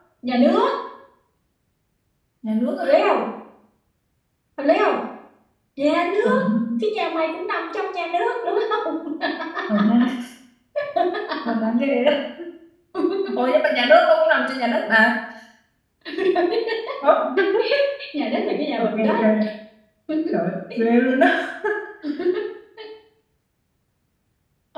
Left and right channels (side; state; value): both; identical; correlation 1.00